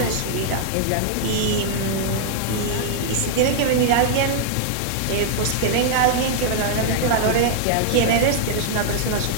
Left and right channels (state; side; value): different; both; correlation -0.01